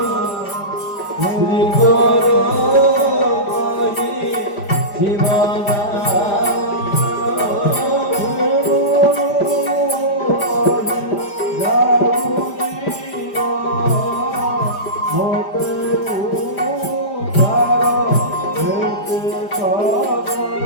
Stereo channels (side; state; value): right; late; 5.0 ms